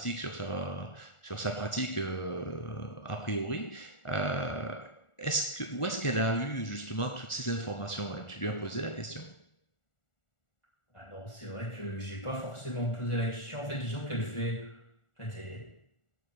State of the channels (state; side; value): late; right; 1.4 ms